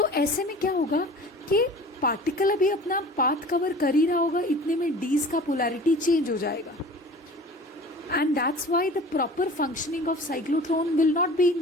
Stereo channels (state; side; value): normal; both; correlation 0.42